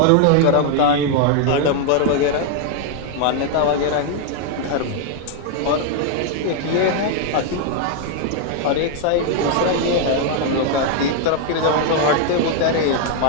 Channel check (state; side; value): different; both; correlation 0.00